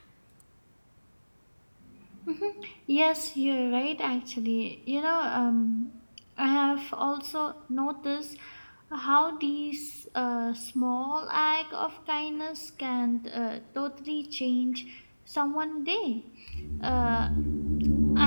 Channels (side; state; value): both; inverted; correlation -1.00